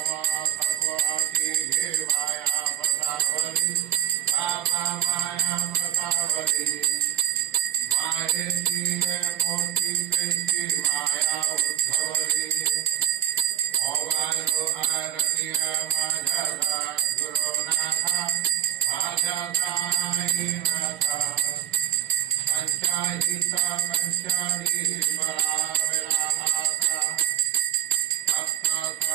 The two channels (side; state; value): left; quieter; 11.5 dB